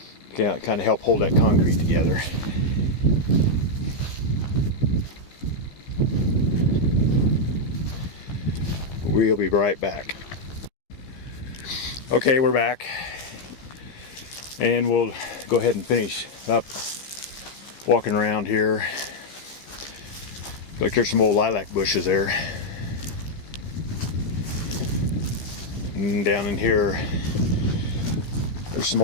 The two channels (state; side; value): late; right; 15 ms